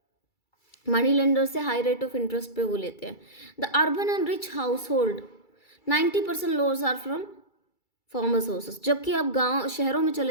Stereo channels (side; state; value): right; late; 2.3 ms